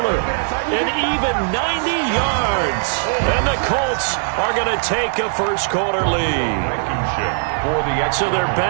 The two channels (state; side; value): silent; left; digital silence